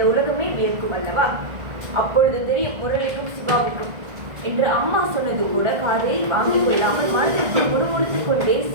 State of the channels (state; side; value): late; left; 1.8 ms